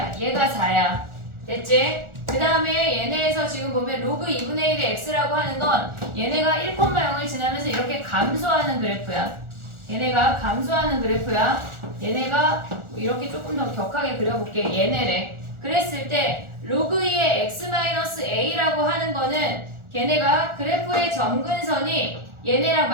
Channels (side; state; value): left; late; 1.4 ms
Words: 얘가 4야. 됐지? 그 다음에 얘네에서 지금 보면 로그 2분의 1의 x라고 하는 건 얘네가 1,0을 지나면서 이렇게 감소하는 그래프야. 얘네가 감소하는 그래프야. 얘네가 이렇게 조금 더 격하게 그려볼게. 얘네래. 그랬을 때 로그 2의 x-a라고 하는 거는 걔네가 그래프의 점근선이 얘네랑